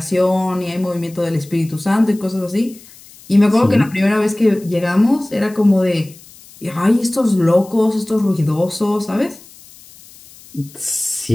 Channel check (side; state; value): left; noise; hiss, 23 dB below the sound